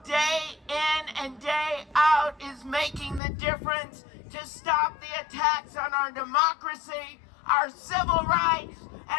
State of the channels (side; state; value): right; drops out; at 3.2 s